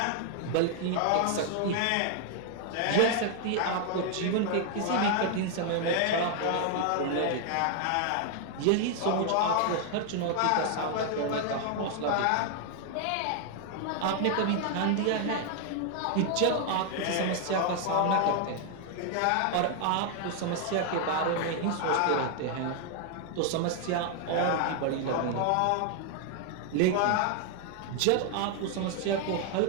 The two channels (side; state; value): both; different; correlation 0.00